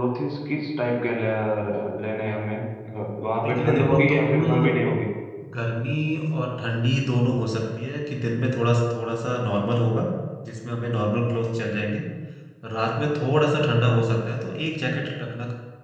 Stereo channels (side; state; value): both; identical; correlation 1.00